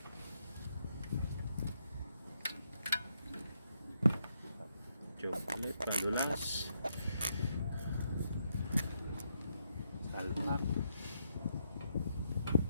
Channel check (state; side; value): inverted; both; correlation -0.78